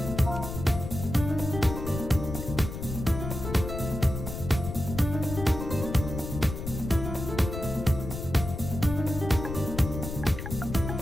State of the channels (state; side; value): noise; left; rumble, 7 dB below the sound